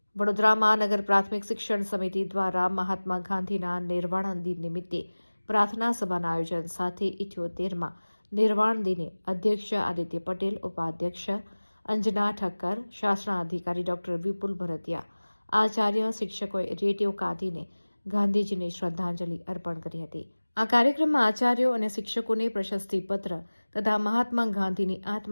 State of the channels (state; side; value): inverted; both; correlation -1.00